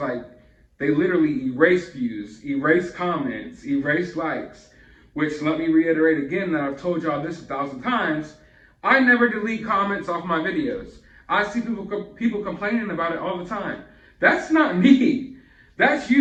they literally erase views, erase comments, erase likes, which, let me reiterate again that I've told y'all this 1,000 times, I never delete comments off my videos. I see people complaining about it all the time. That's not me. That's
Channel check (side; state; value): both; identical; correlation 1.00